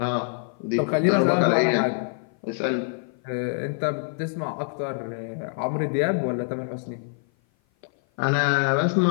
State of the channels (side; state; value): right; silent; 56 dB below the other